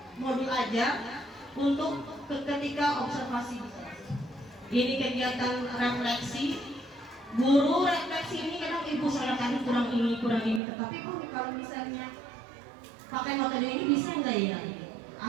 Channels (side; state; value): left; drops out; at 10.6 s